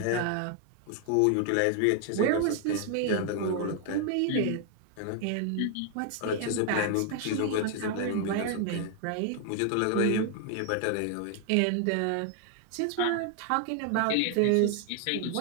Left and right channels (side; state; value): both; different; correlation 0.00